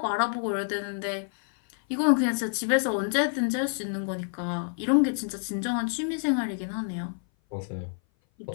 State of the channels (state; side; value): silent; right; 57 dB below the other